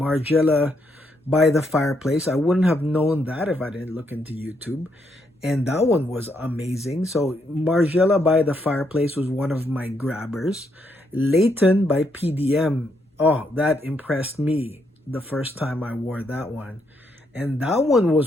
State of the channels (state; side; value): normal; both; correlation 0.76